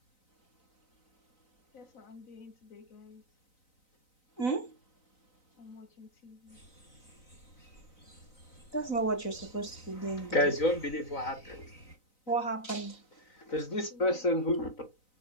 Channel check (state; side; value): late; right; 3.9 ms